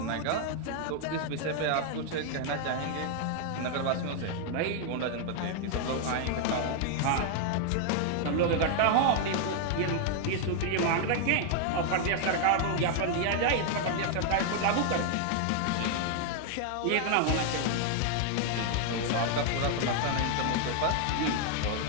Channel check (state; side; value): different; both; correlation 0.00